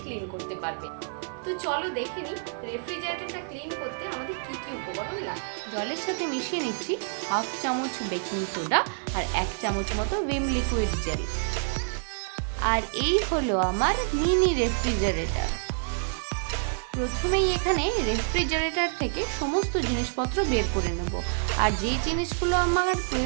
ক্লিন করতে পারবে। তো চলো দেখে নিই রেফ্রিজারেটরটা ক্লিন করতে আমাদের কি কি উপকরণ লাগে। জলের সাথে মিশিয়ে নিচ্ছি হাফ চামচ বেকিং সোডা আর 1 চামচ মতো ভিম লিকুইড জেল। আর এই হলো আমার মিনি রেফ্রিজারেটর। প্রথমেই এখানে রেফ্রিজারেটর থেকে সমস্ত জিনিসপত্র বের করে নেব, আর যে জিনিসগুলো আমার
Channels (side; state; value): left; silent; digital silence